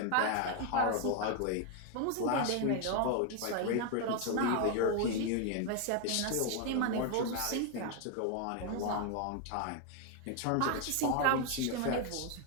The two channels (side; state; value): both; different; correlation 0.01